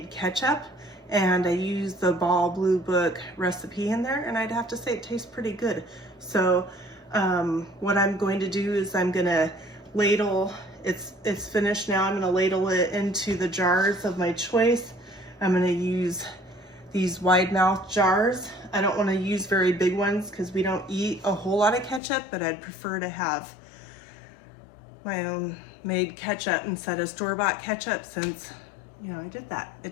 ketchup. And I use the Ball Blue Book recipe in there, and I'd have to say it tastes pretty good. So what I'm going to do is I'm gonna ladle, it's finished now, I'm gonna ladle it into the jars of my choice. I'm gonna use these wide mouth jars. I don't wanna use very big ones because we don't eat a whole lot of ketchup, but I'd prefer to have my own made ketchup instead of store-bought ketchup since, you know, I did that.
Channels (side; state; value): right; drops out; at 22.0 s